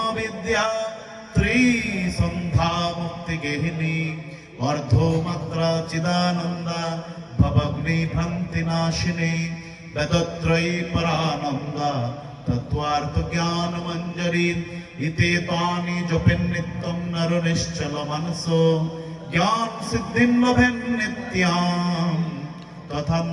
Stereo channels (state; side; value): identical; both; correlation 1.00